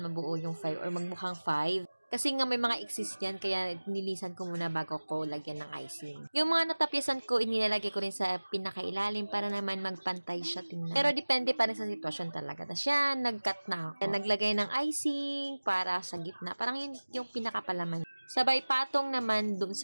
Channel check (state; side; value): inverted; both; correlation -1.00